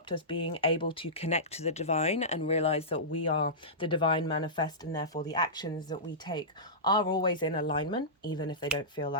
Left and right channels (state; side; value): normal; both; correlation -0.18